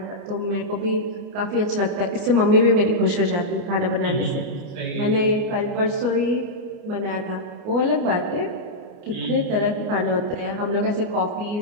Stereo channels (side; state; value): left; late; 29 ms